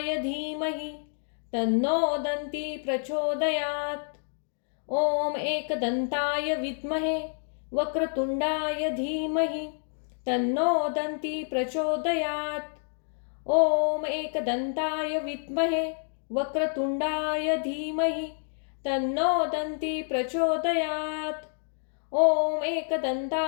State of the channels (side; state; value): right; silent; 59 dB below the other